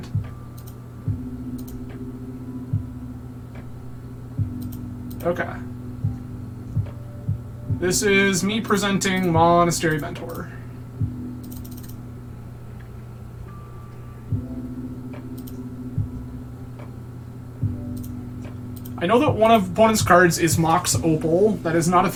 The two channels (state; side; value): identical; both; correlation 1.00